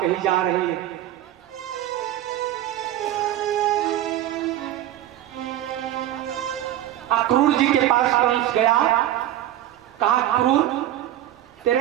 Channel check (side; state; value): left; quieter; 12.9 dB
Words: कही जा रही है। अक्रूर जी के पास कंस गया, कहा क्रूर